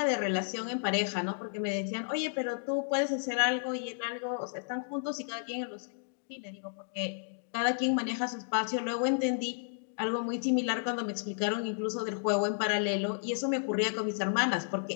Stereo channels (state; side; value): silent; right; digital silence